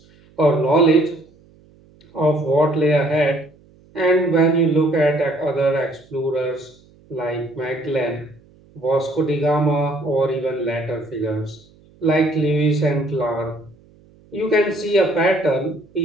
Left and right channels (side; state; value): right; noise; hum, 29 dB below the sound